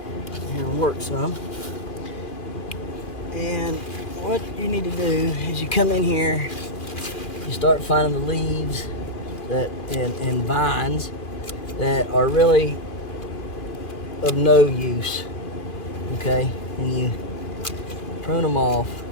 can work some. And what you need to do is you come in here, you start finding the leaves and vines that are really of no use, okay? And you prune them off,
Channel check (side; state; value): right; late; 2.3 ms